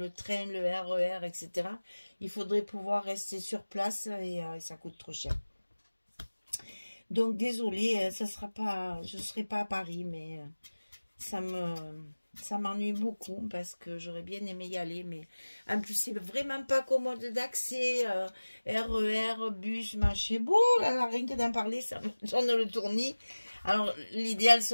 train, le RER, etc., il faudrait pouvoir rester sur place, et ça coûte trop cher. Donc désolé, ça sera pas, je ne serai pas à Paris, mais ça m'ennuie beaucoup parce que j'aurais bien aimé y aller, mais en plus c'est vraiment pas commode d'accès, RER, bus, machin, bon, là, rien que d'en parler, ça me donne le tournis. Alors l'idéal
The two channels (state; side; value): inverted; both; correlation -1.00